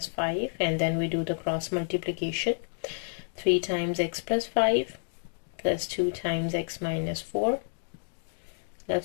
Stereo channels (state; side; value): silent; right; digital silence